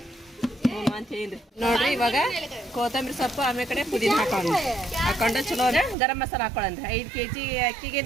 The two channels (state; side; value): drops out; left; at 6.0 s